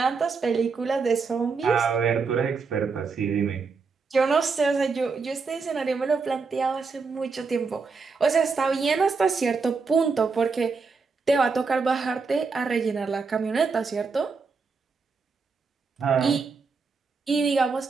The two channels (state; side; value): quieter; left; 4.8 dB